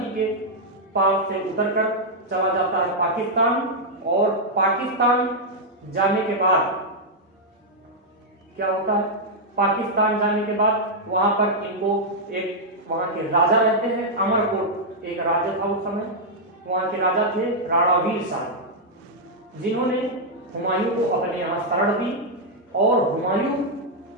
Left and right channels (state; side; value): normal; both; correlation -0.04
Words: के पार से उतरकर चला जाता है पाकिस्तान, और पाकिस्तान जाने के बाद क्या होता है? पाकिस्तान जाने के बाद वहां पर इनको एक वहां के राजा रहते हैं, अमरकोट एक राज्य था उस समय, वहां के राजा थे राणा वीर शाह, जिन्होंने हुमायूं को अपने यहाँ शरण दी। और हुमायूं